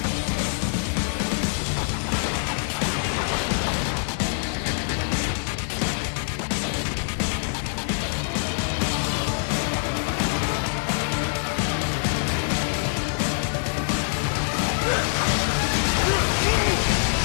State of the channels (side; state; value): right; silent; 62 dB below the other